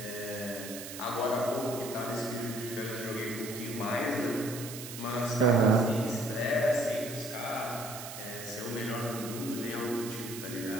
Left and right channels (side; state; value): right; noise; hiss, 10 dB below the sound